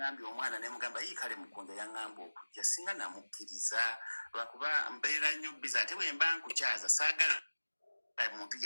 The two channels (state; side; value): inverted; both; correlation -1.00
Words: omwana ne mugamba kale Mukunja yaŋŋamba okujja, singa namukkiriza lwakuba mbeera nnyo busy. Ate bwe mba nkukyaza saagala muntu